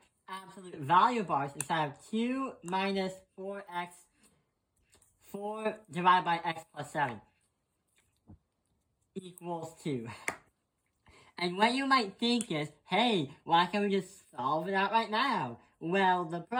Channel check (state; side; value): identical; both; correlation 1.00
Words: absolute value bars inside of 2 minus 4x, 4 divided by x plus 7. Equals 2. And what you might think is, hey, why can't we just solve it out right now? Well, the